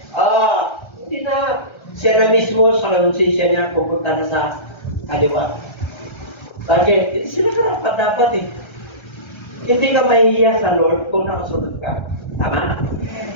Hindi na. Siya na mismo sa konsensya niya pupunta na sa kaliwa. Bakit? Hindi sila karapat dapat eh. Hindi ka mahihiya sa Lord kung nakasunod ka. Tama?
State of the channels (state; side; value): late; right; 1.3 ms